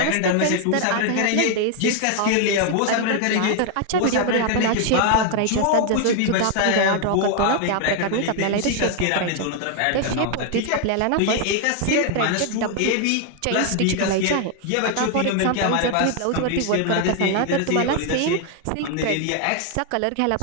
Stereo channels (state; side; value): different; both; correlation 0.00